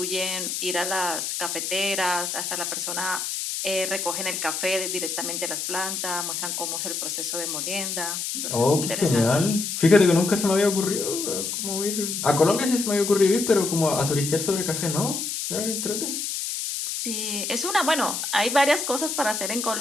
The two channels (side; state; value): left; noise; hiss, 3 dB below the sound